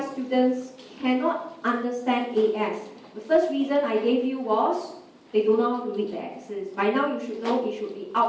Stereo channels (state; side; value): identical; both; correlation 1.00